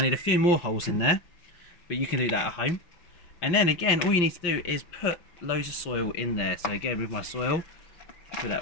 need a few more holes in there, but you can do that at home. And then again, all you need to do is put loads of soil in there. So again, with my soil, put that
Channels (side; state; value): right; late; 6.0 ms